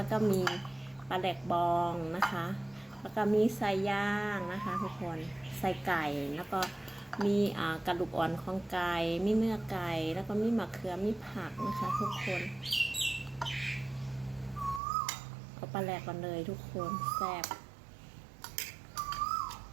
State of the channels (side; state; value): left; drops out; at 14.8 s